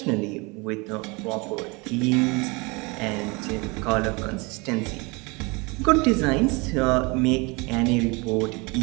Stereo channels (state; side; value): quieter; left; 27.3 dB